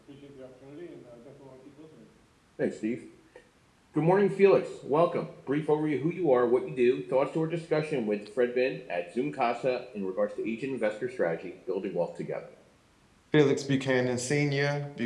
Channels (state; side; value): identical; both; correlation 1.00